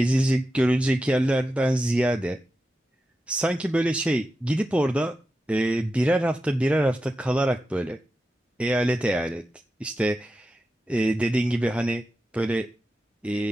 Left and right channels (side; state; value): both; normal; correlation 0.91